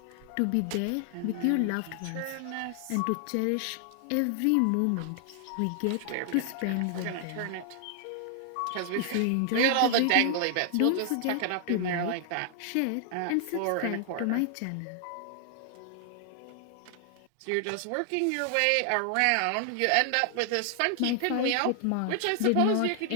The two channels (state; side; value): different; both; correlation 0.00